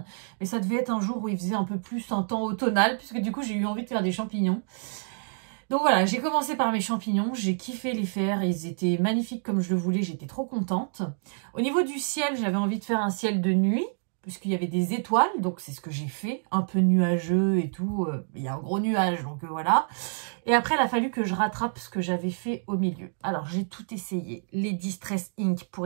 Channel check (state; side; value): silent; left; digital silence